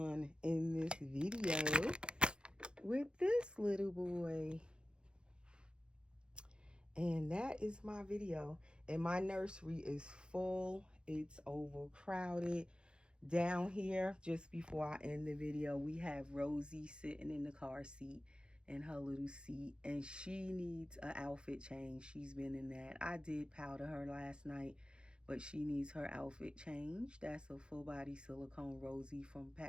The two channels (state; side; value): late; left; 0.052 ms